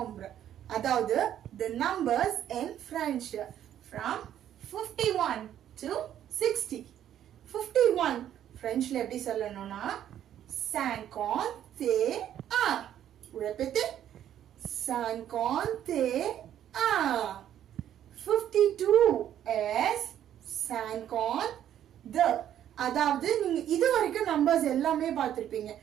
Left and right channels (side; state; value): left; quieter; 10.8 dB